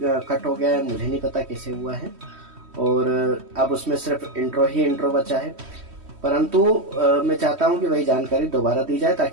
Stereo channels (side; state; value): left; late; 3.1 ms